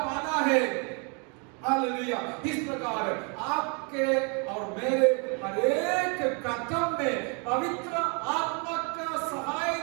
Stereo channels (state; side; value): quieter; left; 35.1 dB